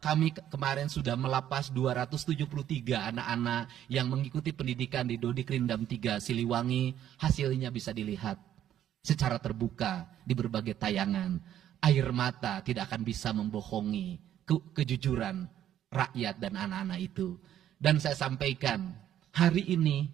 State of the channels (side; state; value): left; quieter; 11.1 dB